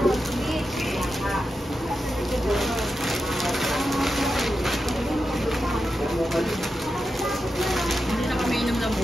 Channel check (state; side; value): normal; both; correlation 0.89